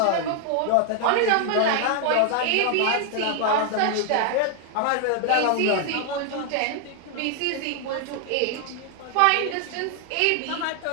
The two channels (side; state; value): both; different; correlation 0.00